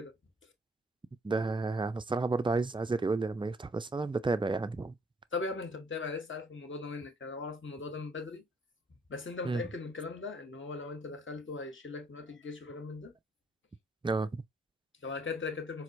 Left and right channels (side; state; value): both; normal; correlation 0.66